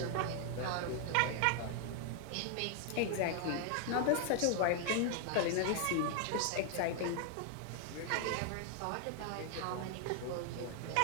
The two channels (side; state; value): both; different; correlation 0.00